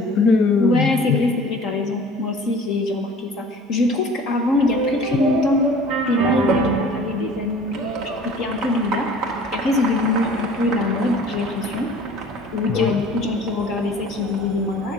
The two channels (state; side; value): normal; both; correlation 0.47